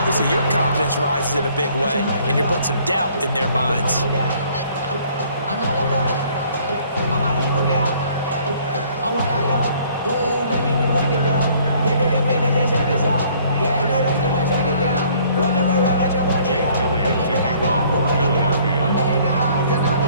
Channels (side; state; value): both; inverted; correlation -0.59